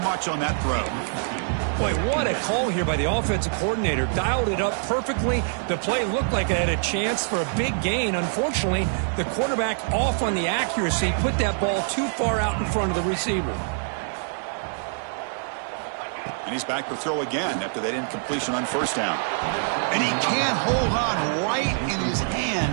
much on that throw. Boy, what a call here by the offensive coordinator. Dialed it up perfectly. The play looked like it had a chance for a big gain. Unfortunately, the quarterback off on the accuracy, put that ball too far out in front of the receiver. And he's back to throw again after that incompletion on first down. And he can't hold on right in his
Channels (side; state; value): left; silent; 60 dB below the other